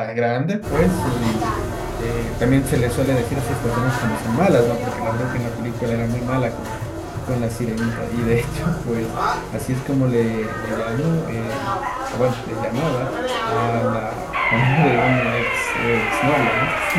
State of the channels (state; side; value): identical; both; correlation 1.00